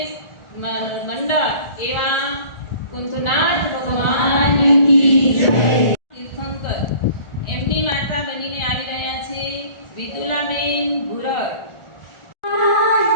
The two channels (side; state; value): right; late; 1.4 ms